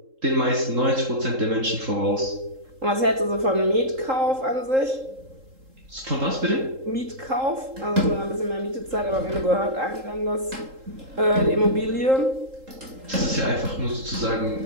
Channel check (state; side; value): late; left; 3.8 ms